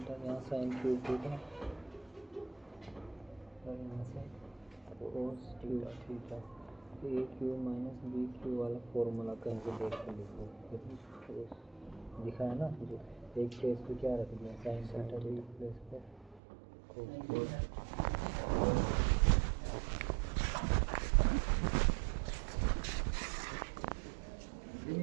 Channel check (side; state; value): left; drops out; at 16.4 s